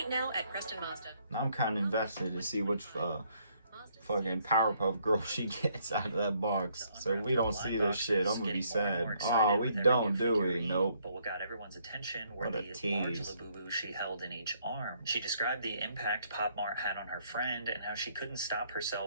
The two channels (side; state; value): both; inverted; correlation -0.69